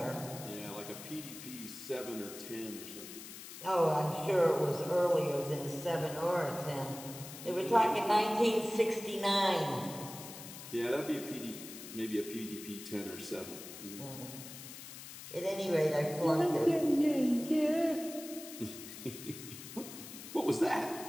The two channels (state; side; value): noise; left; hiss, 12 dB below the sound